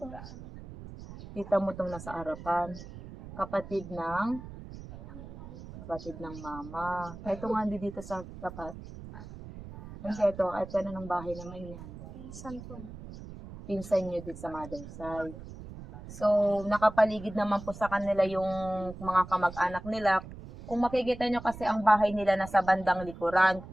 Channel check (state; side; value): noise; right; rumble, 14 dB below the sound